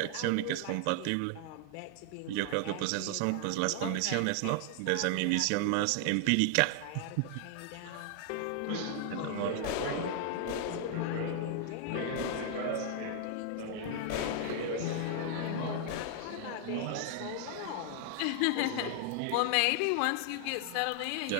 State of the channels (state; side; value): different; both; correlation 0.00